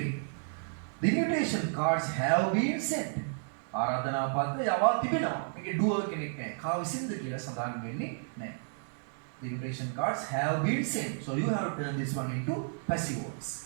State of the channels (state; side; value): silent; left; 56 dB below the other